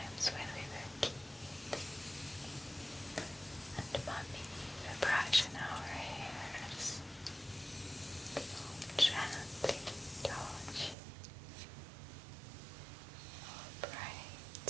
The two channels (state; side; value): drops out; left; at 11.0 s